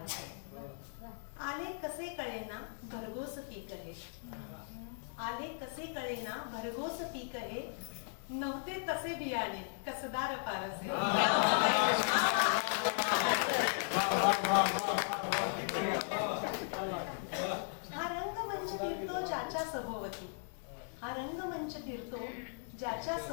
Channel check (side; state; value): right; silent; 53 dB below the other